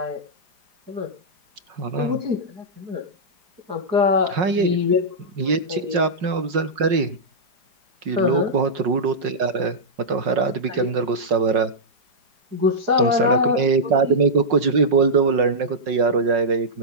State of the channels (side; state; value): left; late; 5.5 ms